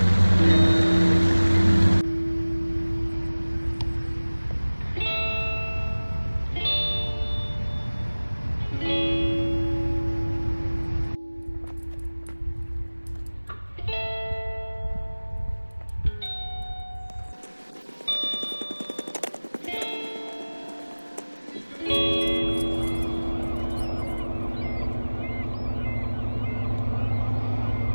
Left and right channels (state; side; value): inverted; both; correlation -1.00